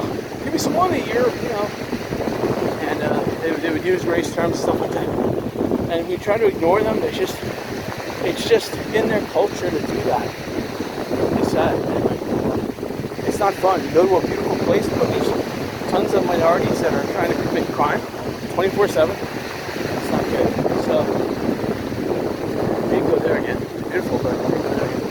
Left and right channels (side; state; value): both; identical; correlation 1.00